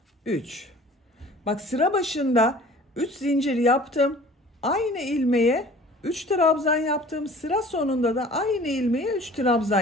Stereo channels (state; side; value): normal; both; correlation 0.47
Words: 3. Bak, sıra başında 3 zincir yaptım. Aynı ilmeğe 3 trabzan yaptım. Sıra sonunda da aynı ilmeğe 3 trabzan